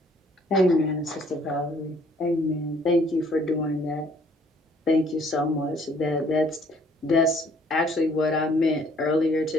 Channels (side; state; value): both; normal; correlation 0.61